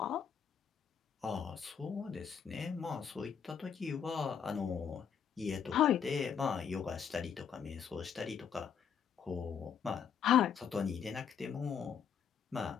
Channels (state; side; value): quieter; right; 7.4 dB